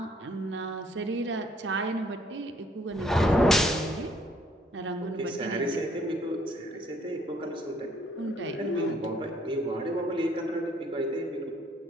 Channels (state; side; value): normal; both; correlation 0.64